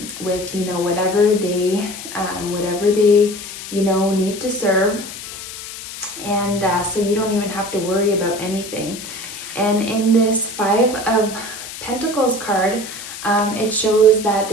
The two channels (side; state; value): left; noise; hiss, 11 dB below the sound